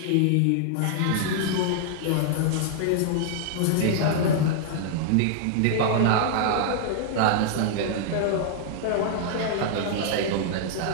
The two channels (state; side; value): different; both; correlation -0.01